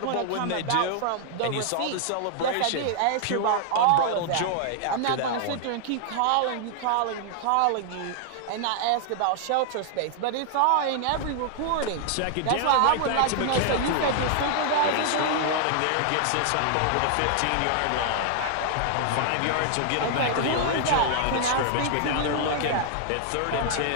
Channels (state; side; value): different; both; correlation 0.00